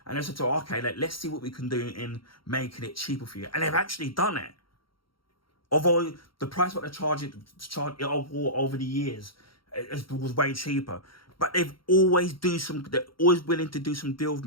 And I said, okay, let's see what we can do in making it cheaper for you. And they've actually done it. Although the price what they're charging over the years was way cheaper, but they're always willing to do some deal with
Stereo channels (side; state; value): right; late; 0.73 ms